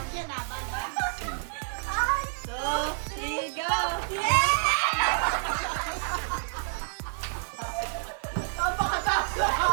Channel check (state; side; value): silent; left; digital silence